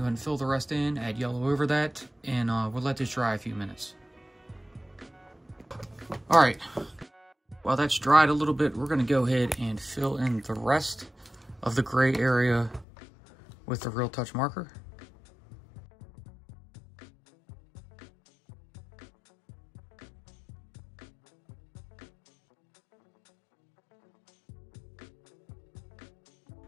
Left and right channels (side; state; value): right; drops out; at 12.9 s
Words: ahead and fill the rest in, add yellow over that, and we'll let this dry a few minutes. All right, while that's dried a little bit, we're gonna go ahead and fill in the rest of the gray area with the Real Touch marker.